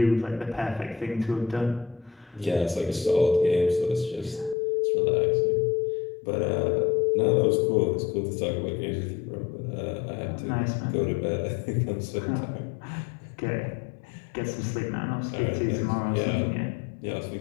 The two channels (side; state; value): right; drops out; at 4.5 s